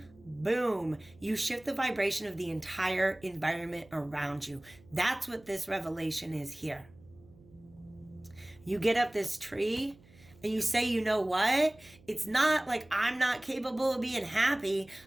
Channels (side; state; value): right; noise; hum, 26 dB below the sound